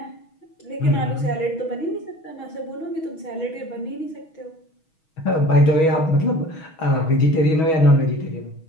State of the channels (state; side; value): late; right; 6.3 ms